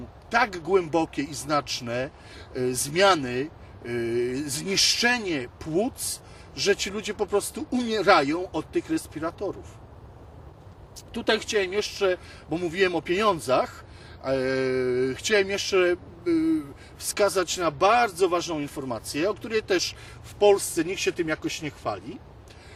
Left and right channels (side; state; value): both; identical; correlation 1.00